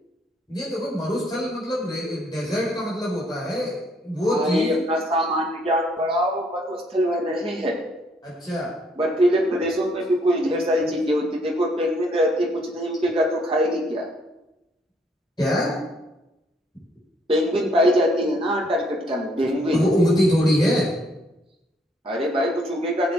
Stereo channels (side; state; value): both; normal; correlation 0.68